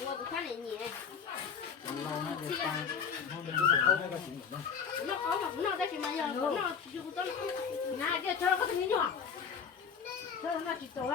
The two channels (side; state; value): right; quieter; 6.6 dB